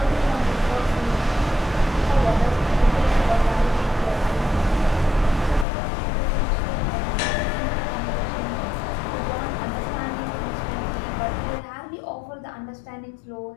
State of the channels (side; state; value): right; drops out; at 5.7 s